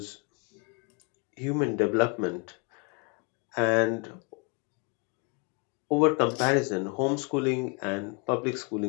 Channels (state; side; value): quieter; right; 35.0 dB